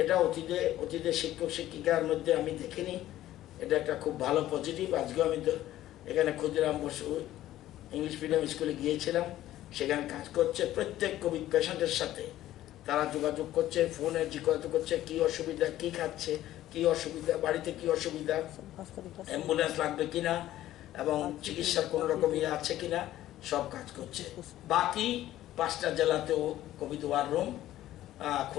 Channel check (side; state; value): right; quieter; 13.9 dB